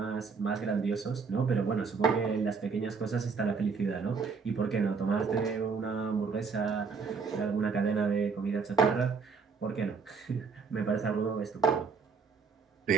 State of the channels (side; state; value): left; quieter; 5.2 dB